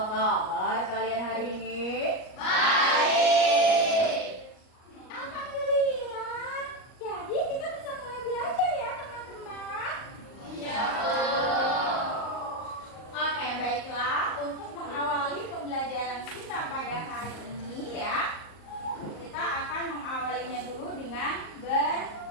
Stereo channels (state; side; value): late; right; 38 ms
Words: kabar kalian hari ini? Baik. Alhamdulillah. Jadi kita bisa mulai belajar ya teman-teman. Iya. Oke, baiklah. Untuk mengawali pembelajaran kita pada hari ini ya, kita akan mengawalinya dulu dengan